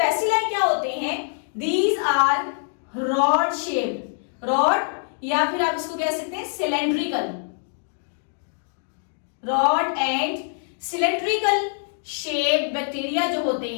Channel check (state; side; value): silent; right; digital silence